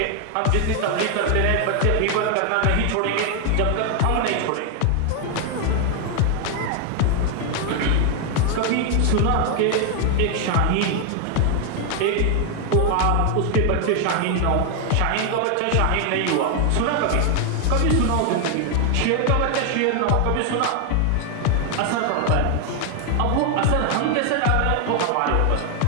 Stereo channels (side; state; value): both; different; correlation 0.01